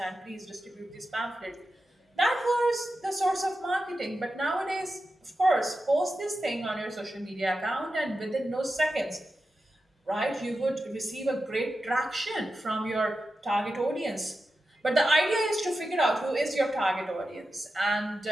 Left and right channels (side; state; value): both; normal; correlation 0.91